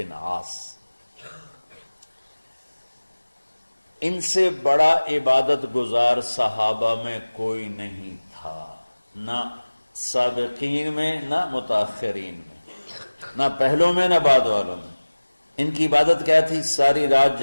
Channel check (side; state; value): both; inverted; correlation -1.00